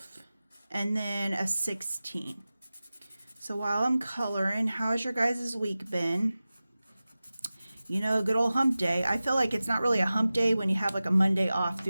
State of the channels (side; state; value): both; inverted; correlation -0.96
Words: and then a 16. So while I'm coloring, how's your guys' week been? You know, good old hump day. I feel like it's not really a hump day when you have like a Monday off